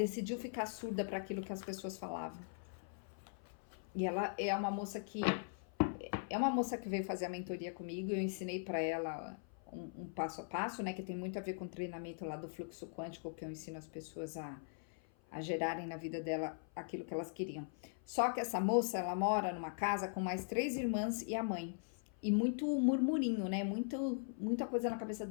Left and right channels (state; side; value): silent; right; 51 dB below the other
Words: ficar surda para aquilo que as pessoas falavam. E ela é uma moça que veio fazer a mentoria comigo. Eu ensinei para ela um passo a passo, né, que tem muito a ver com o treinamento lá do fluxo quântico, que eu ensino as pessoas a gerarem na vida dela aquilo que elas queriam. Só que essa moça, ela mora numa casa com mais 3 irmãs e a mãe. E muito murmurinho, né, muita coisa na cabeça